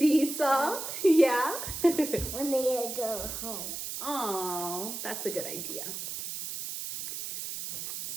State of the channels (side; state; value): right; noise; hiss, 6 dB below the sound